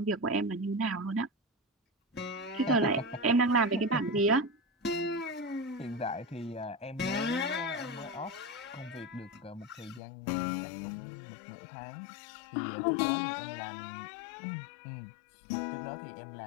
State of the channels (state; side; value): drops out; right; at 10.0 s